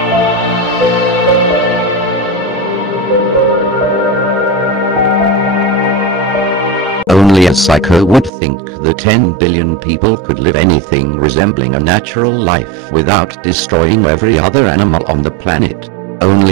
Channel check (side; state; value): left; drops out; at 8.3 s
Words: Only a psycho would think that 10 billion people could live anything resembling a natural life without destroying every other animal on the planet.